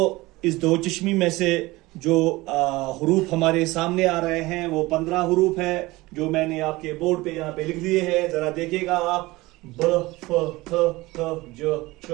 इस दो चश्मी में से जो हुरूफ हमारे सामने आ रहे हैं वो 15 हुरूफ है, जो मैंने आपके बोर्ड पे यहाँ पे लिख दिए हैं। जरा देखिएगा आप। ब, फ, थ, ज, च,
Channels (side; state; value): left; quieter; 20.5 dB